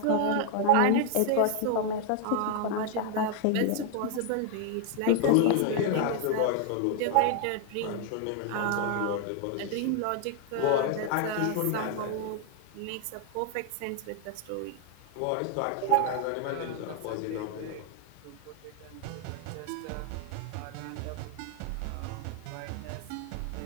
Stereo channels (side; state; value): both; different; correlation 0.00